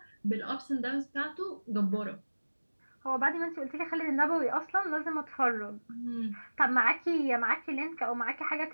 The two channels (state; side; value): inverted; both; correlation -1.00